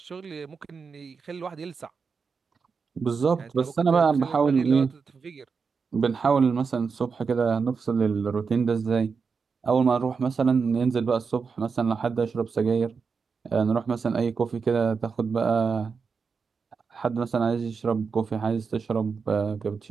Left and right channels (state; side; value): quieter; left; 5.3 dB